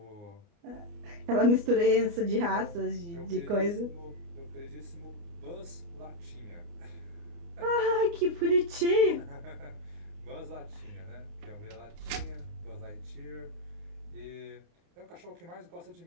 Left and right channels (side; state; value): left; late; 29 ms